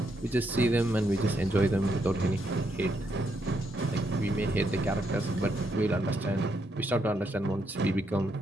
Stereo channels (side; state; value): both; normal; correlation 0.77